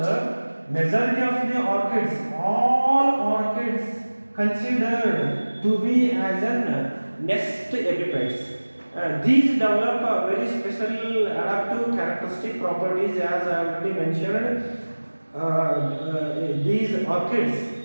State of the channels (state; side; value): inverted; both; correlation -1.00